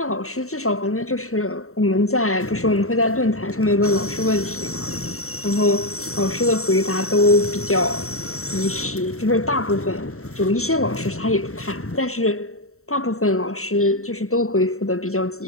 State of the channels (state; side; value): late; right; 0.63 ms